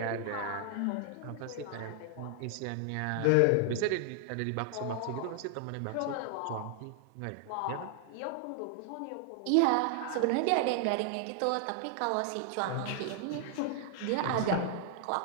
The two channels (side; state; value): both; different; correlation 0.00